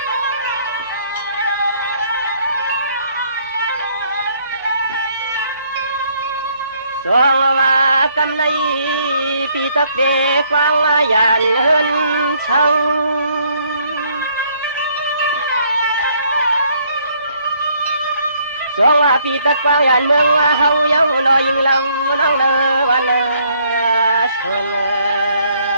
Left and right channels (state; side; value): inverted; both; correlation -0.66